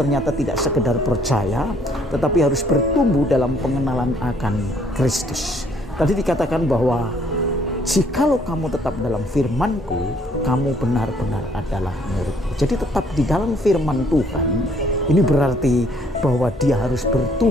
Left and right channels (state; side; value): normal; both; correlation 0.64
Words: tidak sekedar percaya, tetapi harus bertumbuh dalam pengenalan akan Kristus. Tadi dikatakan bahwa jikalau kamu tetap dalam firmanku, kamu benar-benar adalah muridku. Jadi tetap di dalam firman Tuhan, ini berarti bahwa dia harus